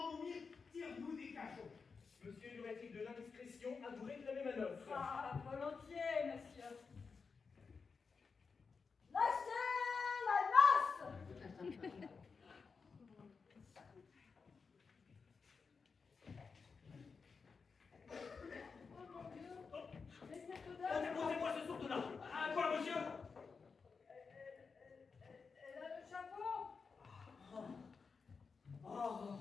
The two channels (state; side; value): quieter; right; 5.1 dB